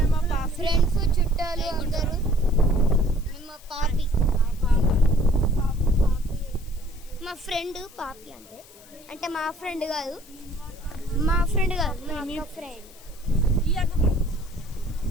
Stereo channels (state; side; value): noise; left; hiss, 23 dB below the sound